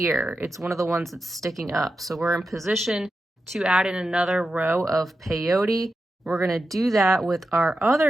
It's one of the ones that's sticking up. So we're in position to add in another row of peyote. We're going to do that with our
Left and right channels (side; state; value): both; normal; correlation 0.90